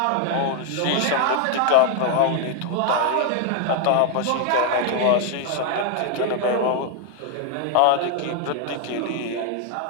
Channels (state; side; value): different; both; correlation 0.00